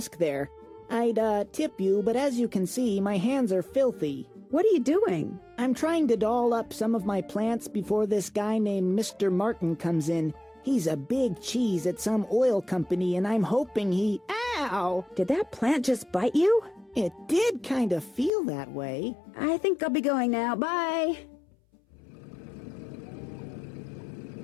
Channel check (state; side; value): drops out; right; at 18.3 s